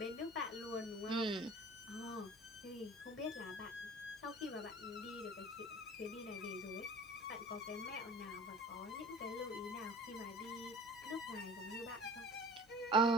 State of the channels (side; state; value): left; noise; hum, 26 dB below the sound